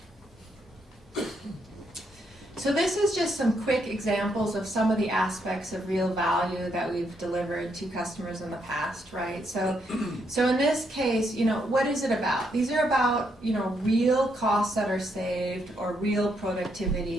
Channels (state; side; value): normal; both; correlation 0.77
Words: So this is just some quick examples of some of the aspects of real value that we've delivered to customers in the past, right? So in this case, you know, what is it about? These are about, you know, real costs that are saved or real